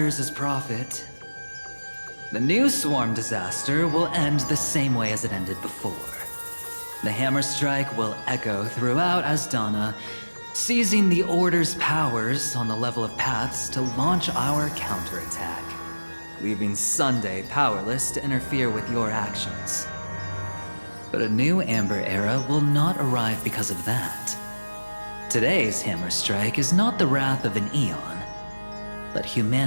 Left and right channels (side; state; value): both; inverted; correlation -1.00